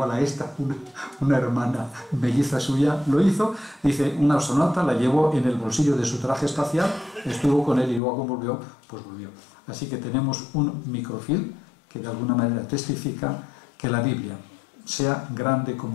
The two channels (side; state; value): right; drops out; at 8.0 s